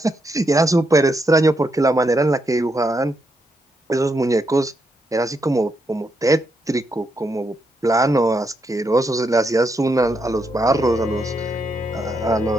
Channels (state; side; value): normal; both; correlation 0.80